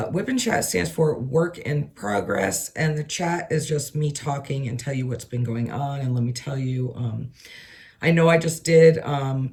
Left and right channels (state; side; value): identical; both; correlation 1.00